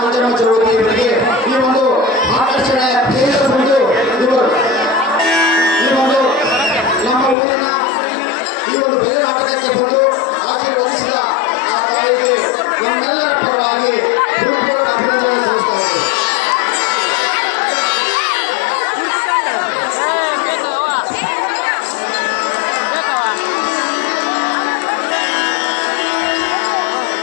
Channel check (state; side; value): drops out; right; at 7.4 s